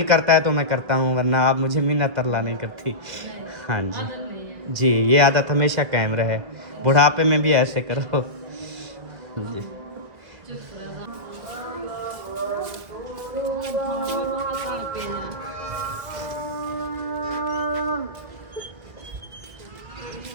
करता है तो मैं करता हूँ, वरना आप मुझे मिन्नत तरला नहीं करती। हाँ जी आदत नहीं है। जी, ये आदत हमेशा कायम रहे, बुढ़ापे में भी ऐसे करो जी।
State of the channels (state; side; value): late; left; 1.6 ms